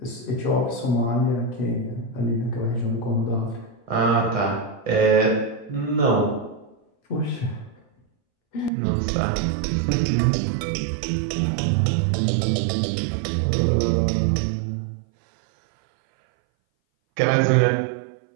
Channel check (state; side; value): drops out; left; at 8.7 s